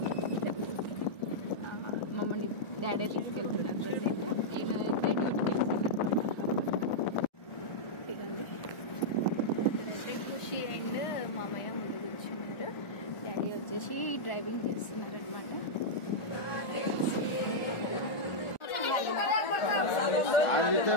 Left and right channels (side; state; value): right; late; 1.4 ms